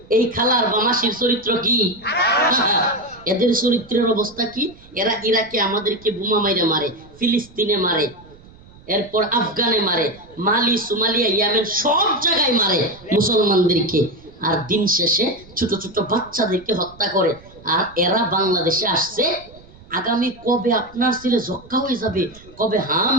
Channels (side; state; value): right; noise; rumble, 23 dB below the sound